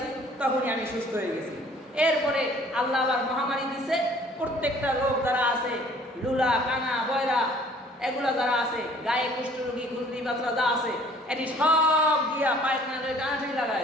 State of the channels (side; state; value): both; normal; correlation 0.55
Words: তখনই আমি সুস্থ হয়ে গেছি। এরপরে আল্লাহ আবার মহামারী দিছে, প্রত্যেকটা লোক যারা আছে, লুলা কানা বয়রা এগুলা যারা আছে, গায়ে কুষ্ঠরোগী খুলতি বাচ্চা যা আছে, এটি সব দিয়া পায়খানা টানাটানি লাগাই